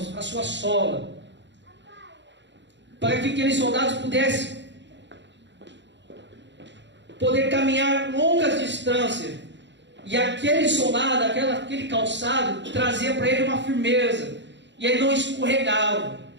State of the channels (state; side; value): late; left; 0.52 ms